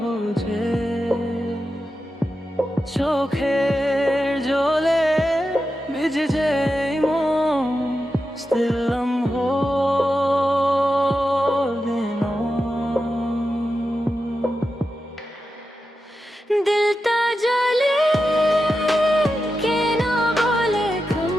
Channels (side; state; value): both; normal; correlation 0.90